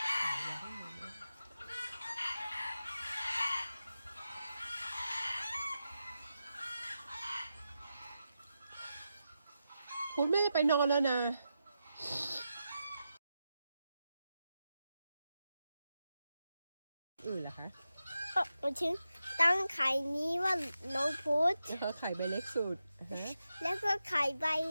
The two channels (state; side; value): inverted; both; correlation -0.89